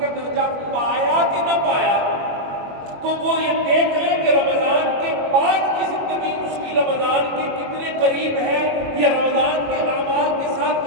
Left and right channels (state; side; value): late; left; 21 ms